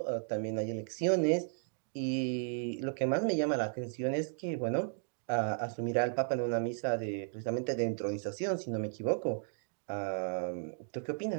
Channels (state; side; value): silent; left; digital silence